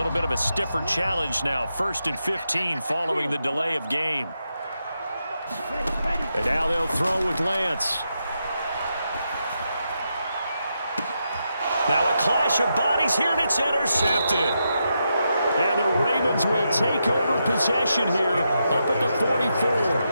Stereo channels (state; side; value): inverted; both; correlation -0.84